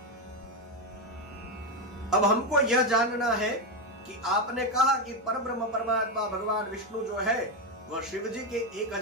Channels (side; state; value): both; normal; correlation 0.09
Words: अब हमको यह जानना है कि आपने कहा कि परब्रह्म परमात्मा भगवान विष्णु जो है वह शिव जी के